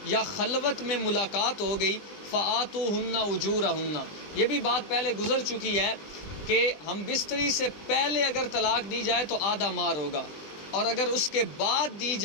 یا خلوت میں ملاقات ہو گئی، فآتوہن اجورہن، یہ بھی بات پہلے گزر چکی ہے کہ ہم بستری سے پہلے اگر طلاق دی جائے تو آدھا مہر ہوگا، اور اگر اس کے بعد دی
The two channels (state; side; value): late; right; 20 ms